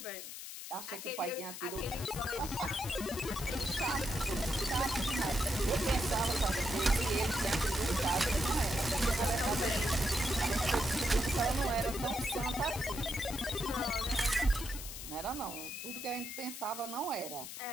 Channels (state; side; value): noise; left; hiss, 9 dB below the sound